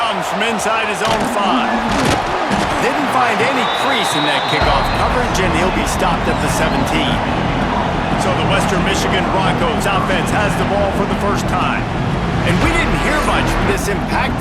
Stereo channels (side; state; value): both; identical; correlation 1.00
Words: from inside his own 5. Didn't find any crease in that kickoff coverage, and he'll be stopped at the 17. So the Western Michigan Broncos offense has the ball for the 1st time. And we didn't hear much from this